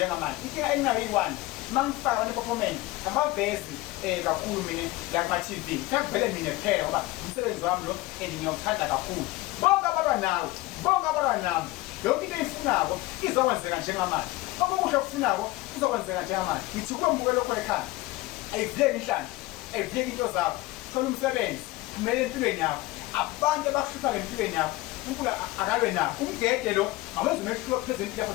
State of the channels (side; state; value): right; quieter; 19.3 dB